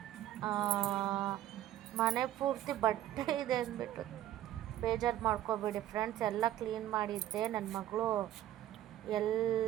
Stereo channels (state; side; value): quieter; left; 12.8 dB